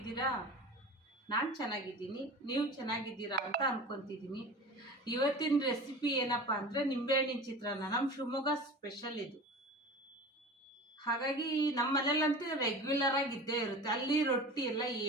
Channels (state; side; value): normal; both; correlation 0.35